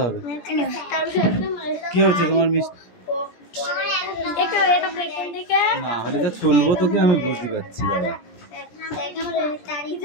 হবে। কি হচ্ছে তোমার মিষ্টি? না হলে যা চলবো তোকে আমি বুঝতে পারছি। দাদা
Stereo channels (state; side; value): late; right; 17 ms